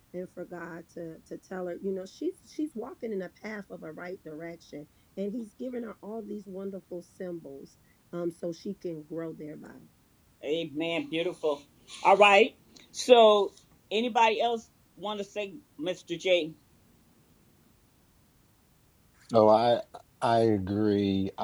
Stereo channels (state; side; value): identical; both; correlation 1.00